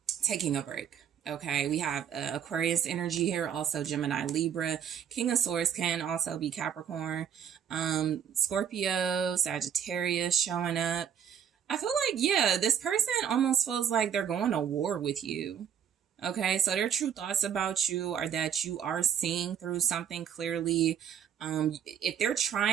taking a break. Okay, we have Aquarius energy here, also Gemini, Libra. King of Swords can also be Capricorn, Scorpio, Sagittarius showing up. I feel like, yeah, this person almost feels like they're going to war with you. Okay, so their true thoughts about you are that you are seeing through something clearly. If they're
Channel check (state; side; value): quieter; left; 8.6 dB